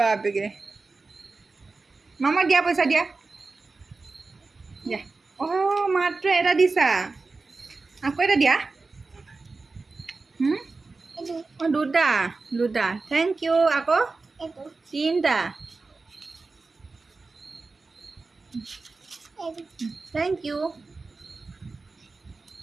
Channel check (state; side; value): quieter; left; 3.9 dB